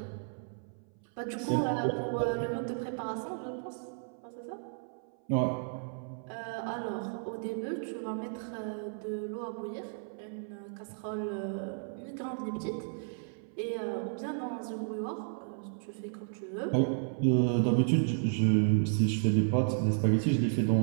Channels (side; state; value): left; silent; 56 dB below the other